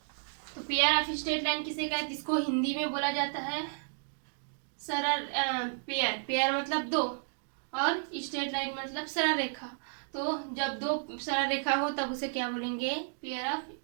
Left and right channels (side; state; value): left; silent; digital silence